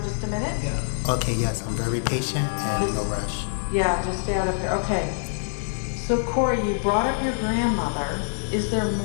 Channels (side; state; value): right; silent; 62 dB below the other